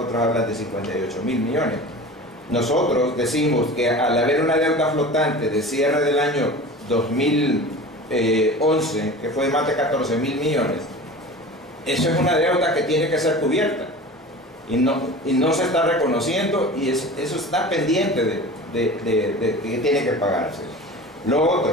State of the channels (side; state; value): both; normal; correlation 0.36